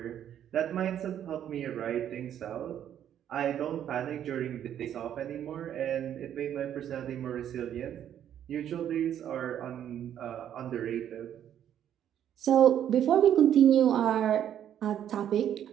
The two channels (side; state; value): left; quieter; 10.2 dB